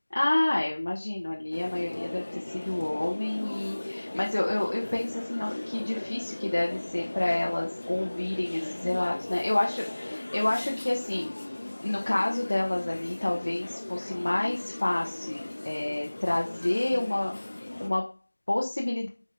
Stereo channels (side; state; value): both; inverted; correlation -1.00